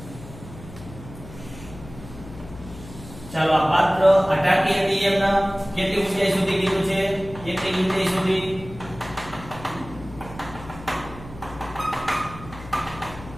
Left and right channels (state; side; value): noise; left; hum, 15 dB below the sound